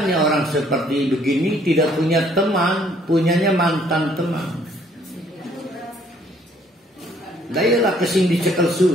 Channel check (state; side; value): normal; both; correlation 0.63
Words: orang seperti begini tidak punya teman, punyanya mantan teman. Dayalah kesing dicekel